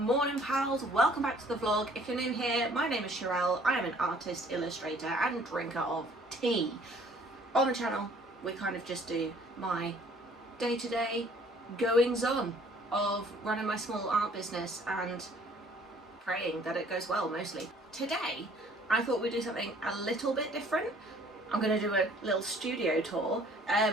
pals. Welcome back to the vlog. If you're new here, my name is Sherelle. I am an artist, illustrator and drinker of tea. On the channel, we kind of just do my day-to-day goings-on of running my small art business and praying that it goes well, mostly. Today, I thought we'd do something a little bit different. I'm going to do a little studio tour,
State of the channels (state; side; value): normal; both; correlation 0.57